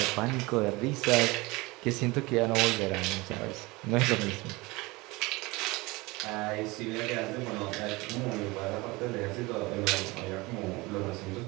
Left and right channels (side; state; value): left; quieter; 23.1 dB